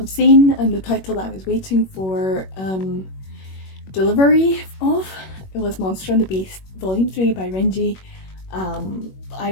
seen, and the title that I was waiting for delivery of, it was Monster and the Beast Volume 3 by Renji. I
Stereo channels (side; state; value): right; late; 21 ms